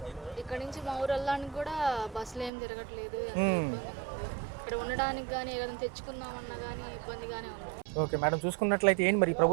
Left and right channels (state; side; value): drops out; left; at 2.5 s